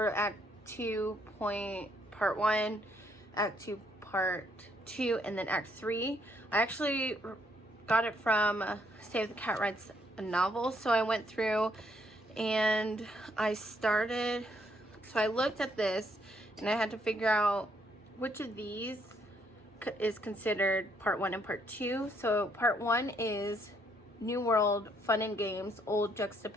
Act 2 point, Part 1, Act 2 Part 2, and then Act 3. I actually got it from Save the Cat Writes a Novel. So I went through and I started, so I looked at this and I had to figure out which of these is considered Part 1 and Part 2. So Part 1 is New World, Fun and Games, Old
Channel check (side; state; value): both; normal; correlation 0.71